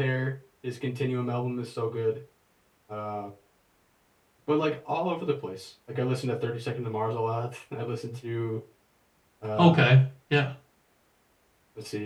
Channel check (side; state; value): both; identical; correlation 1.00